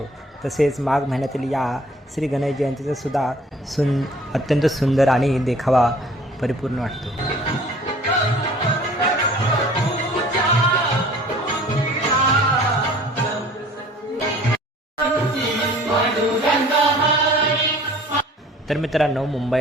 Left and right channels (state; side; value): normal; both; correlation 0.50